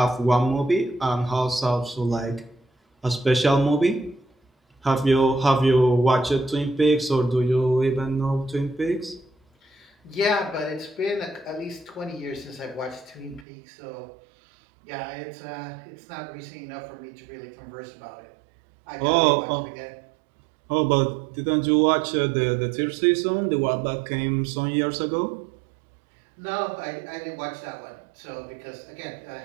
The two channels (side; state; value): left; drops out; at 13.5 s